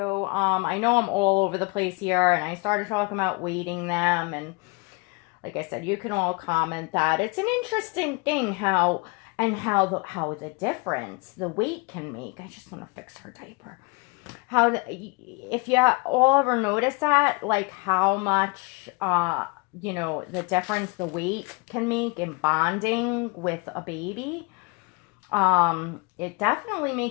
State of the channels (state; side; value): quieter; right; 29.2 dB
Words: I know I'm all over the place here, and I started talking about weighting them, and like I said, you can all comment that. It's an interesting thing how the difference the weight can make. I just want to fix her diaper. If you all ever notice that, like how much, the difference the weight can make in bonding with a baby. It definitely